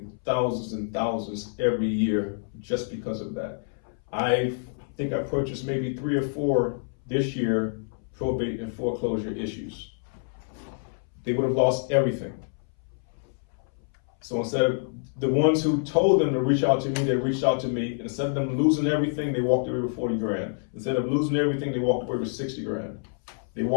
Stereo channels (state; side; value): silent; right; 60 dB below the other